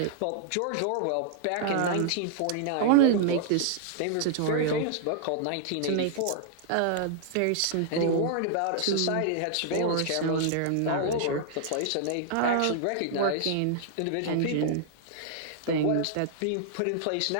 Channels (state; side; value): different; both; correlation -0.01